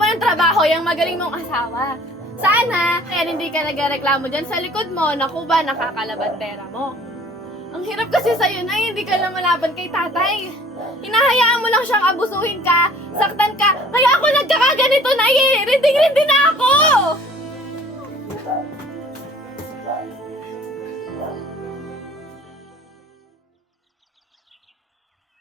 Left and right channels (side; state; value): both; normal; correlation 0.52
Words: ng trabaho yung magaling mong asawa. Sana, kaya hindi ka nagreklamo dyan sa likod mo na kuba nakakalabandera mo. Ang hirap kasi sa'yo na hindi ka lang malaban kay tatay. Hinahayaan mo lang siyang abusuhin ka, saktan ka, kaya ako nagkakaganito na eh. Rinding-rindi na ako!